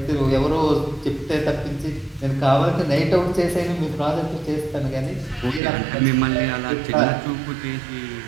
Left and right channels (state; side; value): drops out; left; at 5.6 s